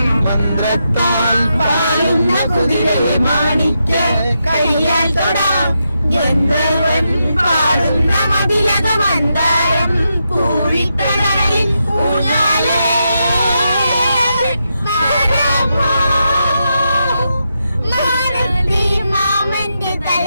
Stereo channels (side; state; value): both; inverted; correlation -0.84